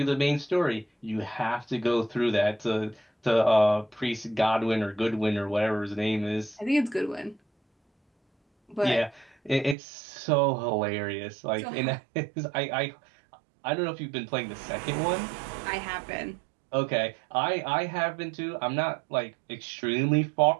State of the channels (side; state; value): left; drops out; at 9.8 s